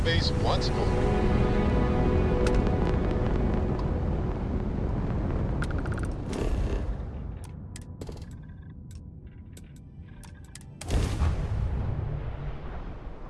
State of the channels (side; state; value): both; identical; correlation 1.00